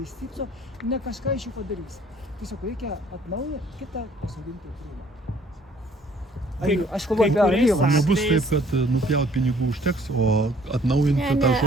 išstypso, ne kažką iš jų padarys. Tiesiog reikia atnaujinti, kitą pasodinti krūmą. Aš kalbu apie alyvą. Nebus taip, kad nupjaut pinigų užteks, o atnaujinti tą žodį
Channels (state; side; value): normal; both; correlation 0.59